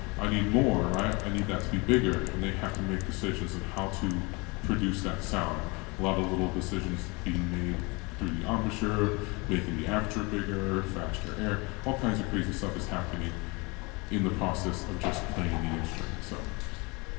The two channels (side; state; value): right; quieter; 27.5 dB